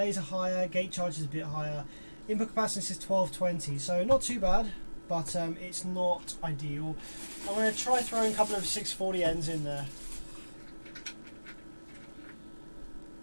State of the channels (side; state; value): both; inverted; correlation -1.00